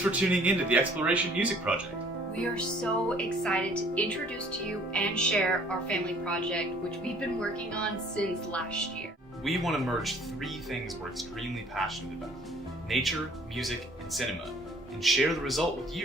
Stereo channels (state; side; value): normal; both; correlation 0.57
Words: for tuning in to the Exploration Music Project. We are so excited to introduce to you and share our family project, which we've been working on since last year. We want to merge three things we're extremely passionate about: nature, music, and cinema, and share the result with